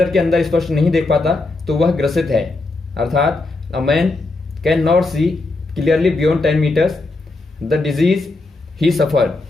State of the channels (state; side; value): quieter; right; 3.2 dB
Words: के अंदर स्पष्ट नहीं देख पाता तो वह ग्रसित है। अर्थात a man can not see clearly beyond 10 metres the disease he suffer.